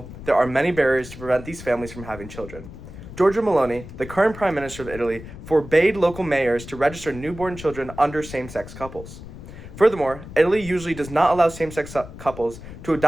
there are many barriers to prevent these families from having children. Giorgia Meloni, the current Prime Minister of Italy, forbade local mayors to register newborn children under same-sex couples. Furthermore, Italy usually does not allow same-sex couples to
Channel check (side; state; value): left; noise; rumble, 14 dB below the sound